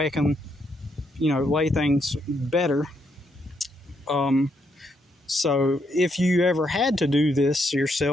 I can, lay things better. So if you ever had to do this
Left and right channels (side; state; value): both; normal; correlation 0.76